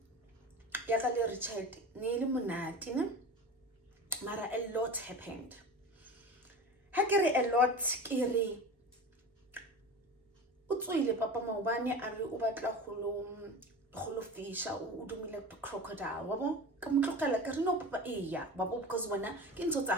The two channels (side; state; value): both; normal; correlation 0.32